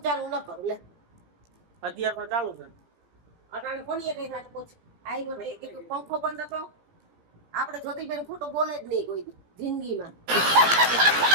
ચાલુ ન કરું લે અત્યારે તો ચાલુ છે. અટાણે કોની કઈ વાત પૂછ આવ્યો ને કીધું પંખો બંધ હતો. આપણે જ્યોતિબેન ખોટું બોલે જ નહીં કોઈ દી જિંદગીમાં.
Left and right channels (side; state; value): left; late; 17 ms